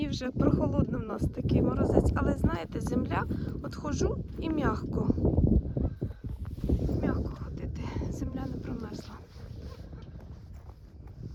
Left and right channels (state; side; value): identical; both; correlation 1.00